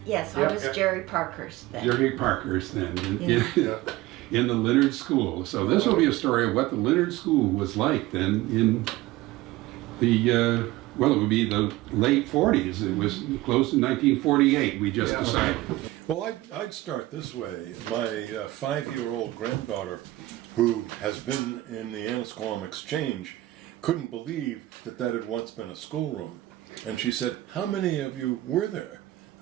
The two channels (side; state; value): left; quieter; 17.5 dB